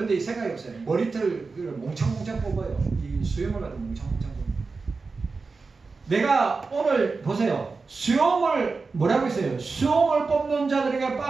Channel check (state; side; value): quieter; left; 4.3 dB